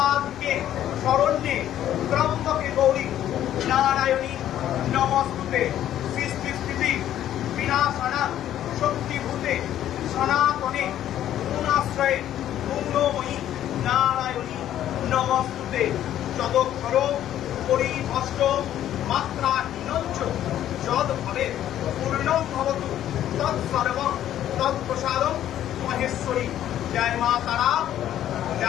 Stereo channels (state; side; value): quieter; right; 11.7 dB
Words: শরণ্যে ত্রম্বকে গৌরী নারায়ণী নমস্তুতে সৃষ্টি স্থিতি বিনাশনা শক্তিভূতে সনাতনে গুণাশ্রয়ে গুণময়ী নারায়ণী নমস্তুতে যদক্ষর পরিভষ্ট মাত্রা হীনঞ্চ যদ ভবে পূর্ণং ভবতু তৎসর্বং তৎপ্রসাদং মহেশ্বরী। জয় মা তারা,